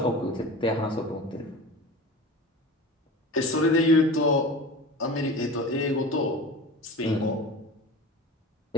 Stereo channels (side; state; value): both; normal; correlation 0.34